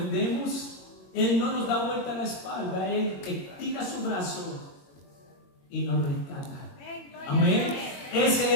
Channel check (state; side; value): late; right; 22 ms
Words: Él no nos da vuelta a la espalda. Él estira su brazo y nos rescata. Amén. Ese